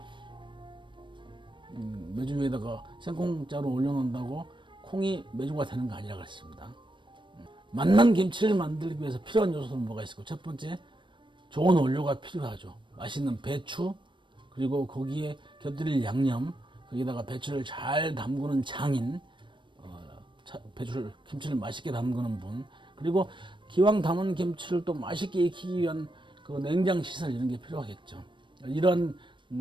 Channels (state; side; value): late; left; 0.23 ms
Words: 메주 위에다가 생콩자루 올려놓는다고 콩이 메주가 되는 거 아니라 그랬습니다. 맛난 김치를 만들기 위해서 필요한 요소는 뭐가 있을까요? 첫 번째, 좋은 원료가 필요하죠. 맛있는 배추, 그리고 거기에 곁들일 양념, 거기다가 배추를 잘 담그는 장인, 김치를 맛있게 담그는 분, 그리고 기왕 담은 김치를 또 맛있게 익히기 위한 그 냉장 시설 이런 게 필요하겠죠. 이런